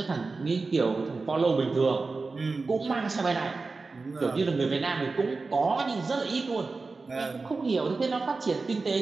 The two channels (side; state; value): left; quieter; 3.9 dB